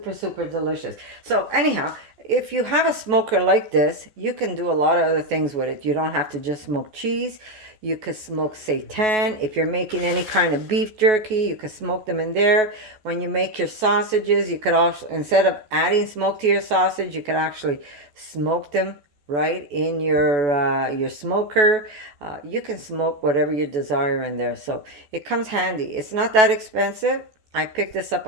super delicious. So anyhow, if you have a smoker like this, you can do a lot of other things with it. You don't have to just smoke cheese. You could smoke seitan. If you're making any kind of beef jerky, you could smoke them in there. When you make your sausages, you could also, instead of adding smoke to your sausage, you could actually smoke them right in your smoker. You can smoke whatever you desire in there. So it comes handy. It's not that expensive. I picked this up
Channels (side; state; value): left; late; 14 ms